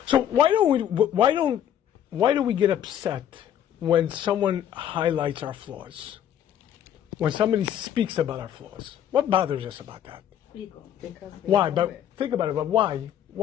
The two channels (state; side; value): quieter; right; 10.2 dB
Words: So why do we get upset when someone highlights our flaws? When somebody speaks about our flaws? What bothers us about that? Ego. Why? But think about it. But why?